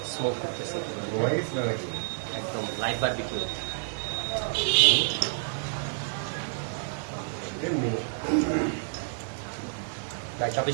স্মোক করতেছে কিভাবে ঘুমাই গেছি না নাকি? একদম লাইট বারবিকিউ এমনি।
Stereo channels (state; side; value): silent; left; digital silence